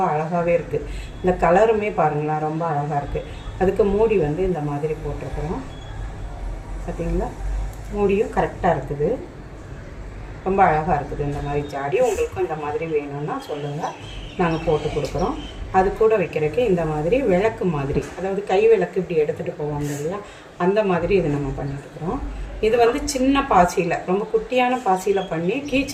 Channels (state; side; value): identical; both; correlation 1.00